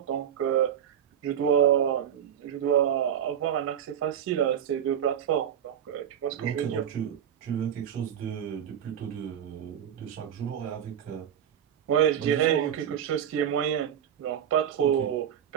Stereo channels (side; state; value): left; quieter; 9.3 dB